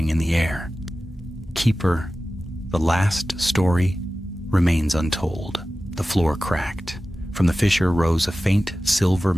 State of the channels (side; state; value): both; normal; correlation 0.95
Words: in the air. "Keeper, the last story remains untold." The floor cracked. From the fissure rose a faint silver